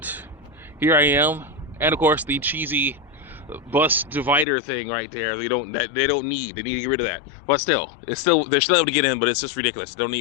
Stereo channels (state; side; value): drops out; right; at 4.5 s